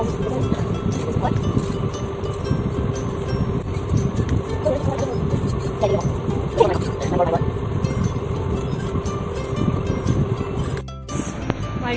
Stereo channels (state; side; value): identical; both; correlation 1.00